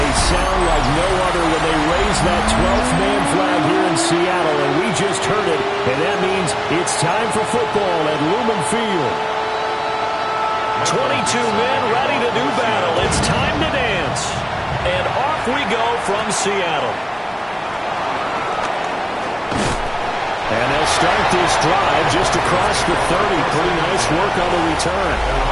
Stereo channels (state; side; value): identical; both; correlation 1.00